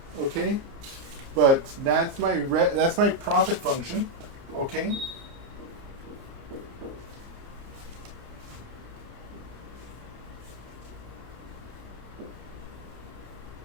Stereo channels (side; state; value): left; late; 29 ms